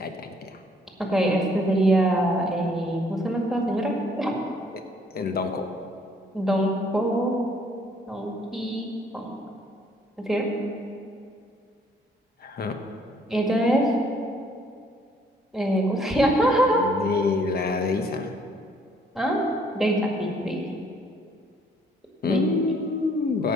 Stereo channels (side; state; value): both; normal; correlation 0.63